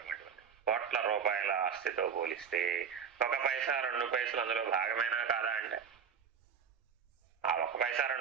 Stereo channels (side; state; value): left; quieter; 6.9 dB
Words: కోట్ల రూపాయల ఆస్తితో పోలిస్తే 1 పైసా 2 పైసలు అందులో భాగమేనా కాదా అంటే ఆ 1 పైసా